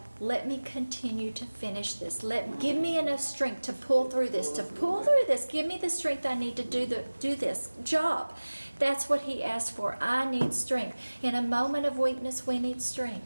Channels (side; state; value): both; inverted; correlation -1.00